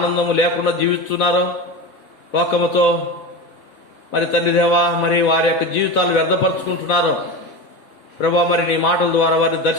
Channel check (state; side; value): late; right; 3.6 ms